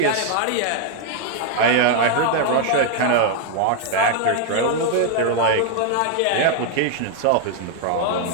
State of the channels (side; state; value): both; different; correlation 0.00